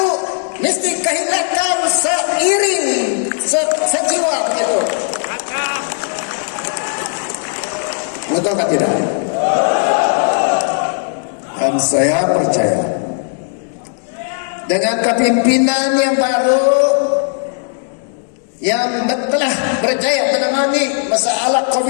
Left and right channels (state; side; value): silent; right; 68 dB below the other